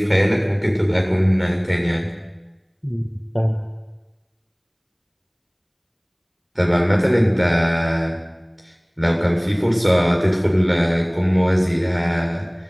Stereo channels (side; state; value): both; identical; correlation 1.00